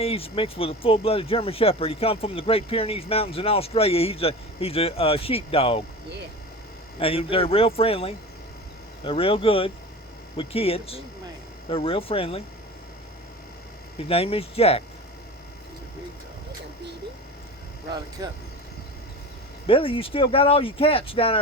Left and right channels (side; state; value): both; normal; correlation 0.33